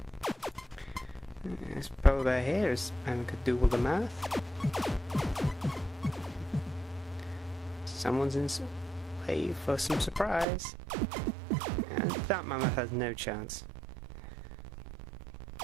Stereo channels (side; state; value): left; drops out; at 10.5 s